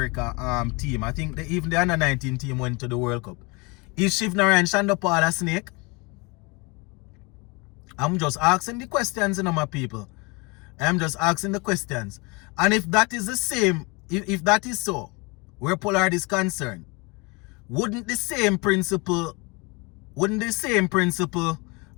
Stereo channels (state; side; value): quieter; right; 28.1 dB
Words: team. I think even the under 19 team went to the World Cup. Is Shivnarayan Shandopal a snake? I'm just asking the questions, you know, my people. I'm just asking the questions. And if that is the same, if that is so, where Pollard is concerned, wouldn't the same principle